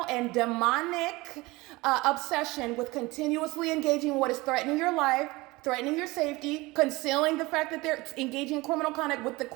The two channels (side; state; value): left; quieter; 22.0 dB